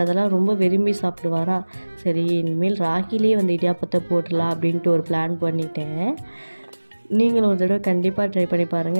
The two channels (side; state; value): both; inverted; correlation -1.00